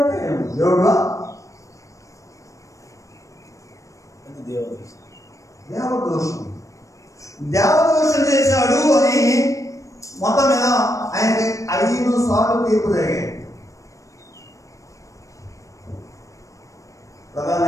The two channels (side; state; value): right; late; 0.16 ms